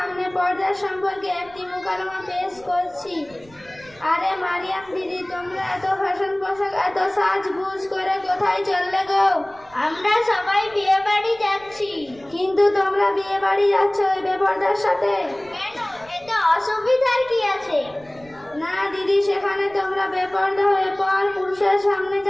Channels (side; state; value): right; noise; rumble, 26 dB below the sound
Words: পর্দা সম্পর্কে একটি মুকালমা পেশ করছি। আরে মারিয়াম দিদি, তোমরা এত ফ্যাশন পোশাক, এত সাজগুজ করে কোথায় চললে গো? আমরা সবাই বিয়ে বাড়ি যাচ্ছি। কিন্তু তোমরা বিয়ে বাড়ি যাচ্ছ ওই বেপর্দার সাথে? কেন, এতে অসুবিধার কি আছে? না দিদি, সেখানে তোমরা বেপর্দা হয়ে পর পুরুষের সামনে